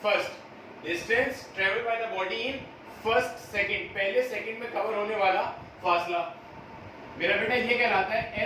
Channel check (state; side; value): identical; both; correlation 1.00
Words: first. Distance travel by the body in first second, पहले सेकंड में कवर होने वाला फासला। मेरा बेटा ये कहलाता है